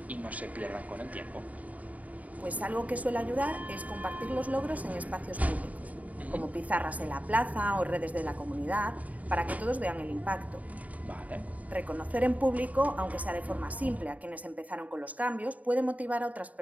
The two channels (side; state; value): left; late; 0.072 ms